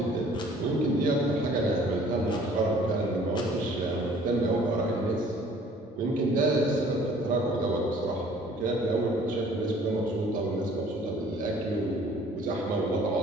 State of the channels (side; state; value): both; normal; correlation 0.54